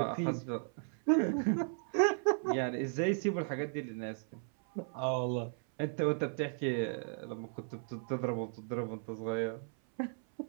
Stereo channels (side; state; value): left; silent; 54 dB below the other